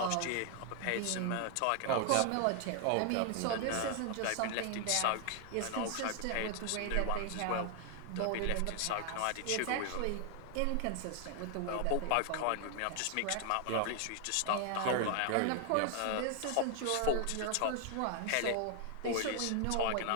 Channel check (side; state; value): both; different; correlation 0.00